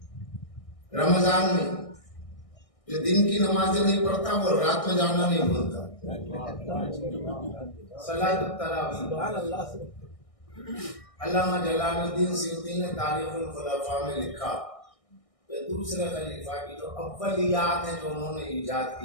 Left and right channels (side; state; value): right; late; 1.6 ms